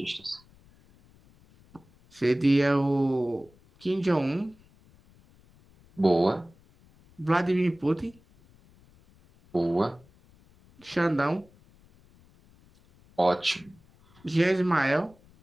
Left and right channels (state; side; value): noise; left; rumble, 29 dB below the sound